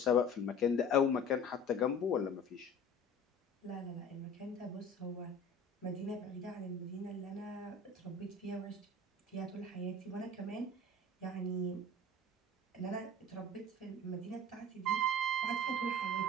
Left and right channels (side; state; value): both; normal; correlation 0.42